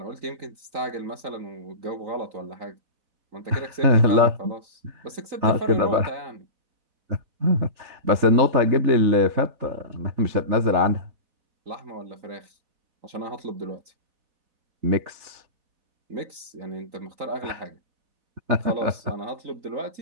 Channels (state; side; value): late; left; 3.9 ms